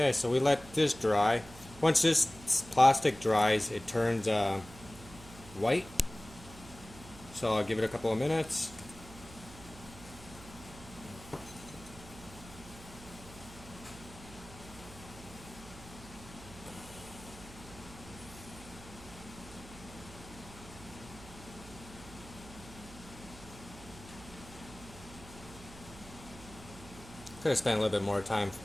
so we let this dry. Once this plastic dries, it turns white. So I'll give it a couple of minutes. Could have spent a little bit more time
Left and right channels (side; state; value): right; noise; hum, 17 dB below the sound